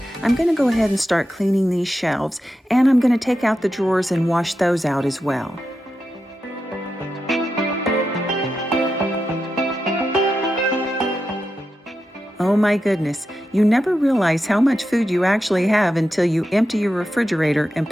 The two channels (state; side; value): normal; both; correlation 0.89